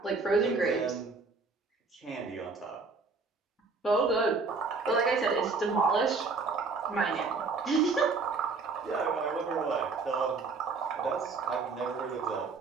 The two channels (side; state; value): left; quieter; 4.3 dB